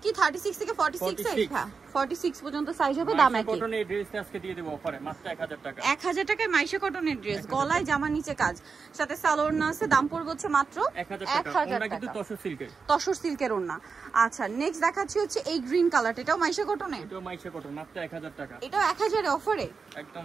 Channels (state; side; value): quieter; left; 5.1 dB